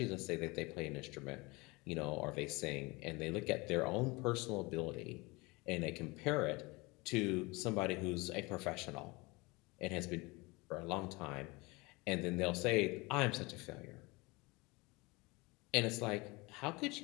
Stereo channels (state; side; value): quieter; right; 24.9 dB